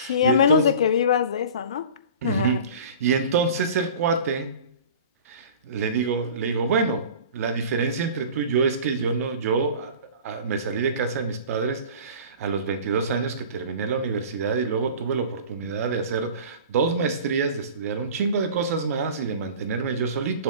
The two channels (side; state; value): both; inverted; correlation -0.40